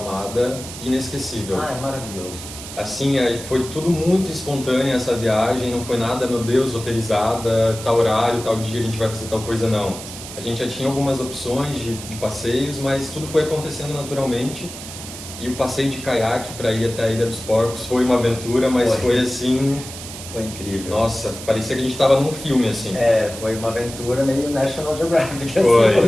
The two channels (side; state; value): right; noise; hiss, 12 dB below the sound